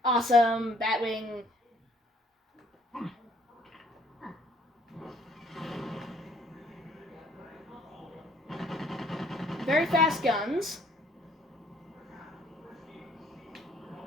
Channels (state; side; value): normal; both; correlation 0.61